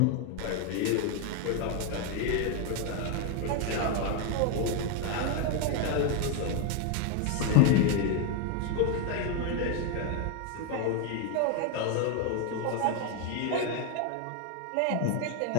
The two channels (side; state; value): both; different; correlation 0.01